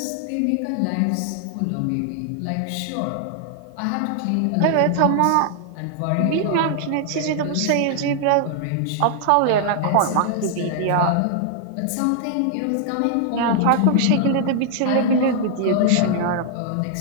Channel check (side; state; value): both; different; correlation -0.01